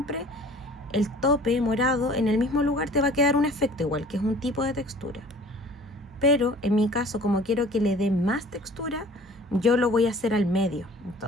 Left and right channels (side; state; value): both; normal; correlation 0.48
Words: el tope morado en el mismo lugar te va a quedar un efecto igual, que es un tipo de textura. Pero en mi caso, como quiero que le dé más textura, yo lo voy a hacer al medio.